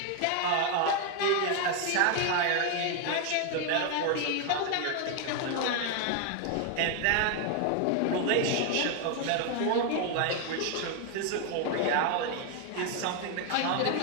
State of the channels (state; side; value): different; both; correlation 0.01